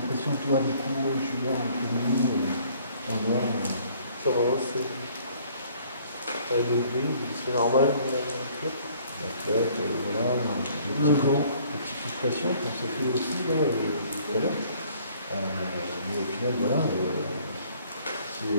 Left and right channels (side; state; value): both; inverted; correlation -0.58